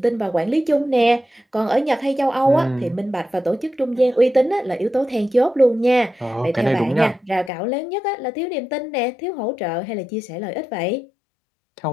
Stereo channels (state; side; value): drops out; right; at 7.5 s